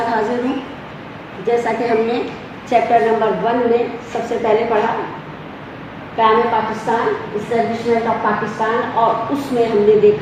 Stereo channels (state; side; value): identical; both; correlation 1.00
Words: حاضر ہوں. جیسا کہ ہم نے چیپٹر نمبر 1 میں سب سے پہلے پڑھا قیام پاکستان، اسٹیبلشمنٹ آف پاکستان، اور اس میں ہم نے